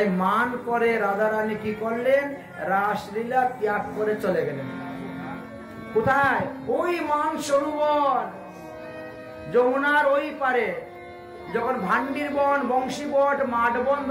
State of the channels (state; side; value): identical; both; correlation 1.00